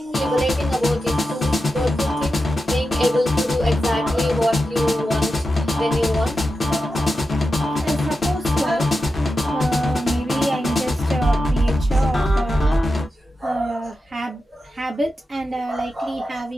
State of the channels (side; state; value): both; normal; correlation 0.90